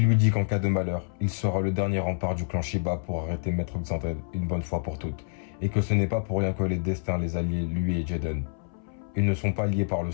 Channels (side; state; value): right; silent; 60 dB below the other